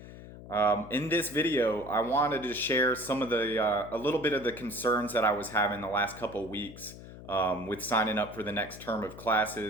In this video, I wanted to share some of a little bit of the concerns that I was having the last couple weeks with signing up for the next term of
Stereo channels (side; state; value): left; noise; hum, 15 dB below the sound